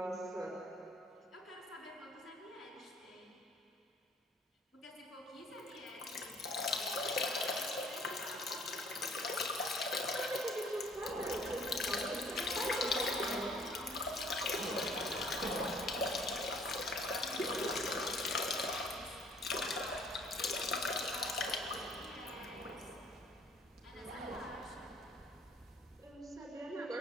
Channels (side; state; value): both; normal; correlation 0.58